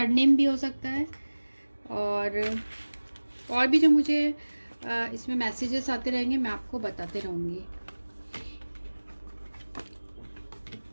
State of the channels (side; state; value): both; inverted; correlation -1.00